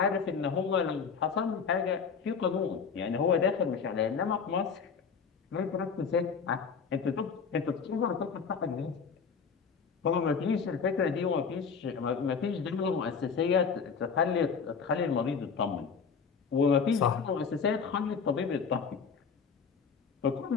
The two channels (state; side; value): quieter; right; 5.9 dB